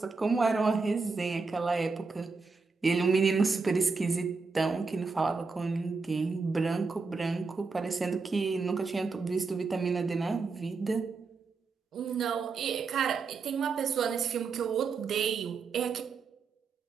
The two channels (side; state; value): left; quieter; 4.5 dB